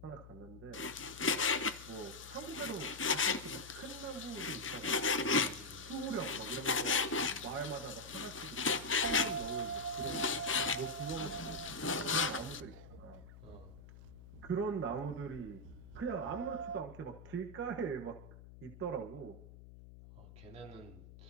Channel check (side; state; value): left; noise; hum, 17 dB below the sound